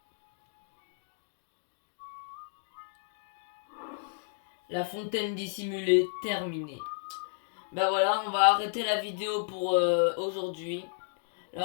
La fontaine dissimulée terminée. Bah voilà, on va arrêter la vidéo pour aujourd'hui.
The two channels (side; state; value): right; silent; digital silence